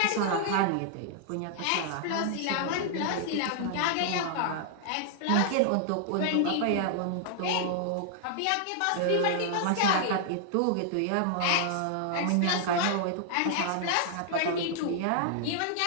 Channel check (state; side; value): different; both; correlation -0.01